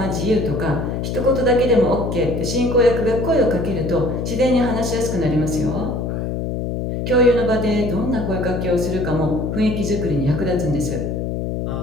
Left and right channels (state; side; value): noise; left; hum, 2 dB below the sound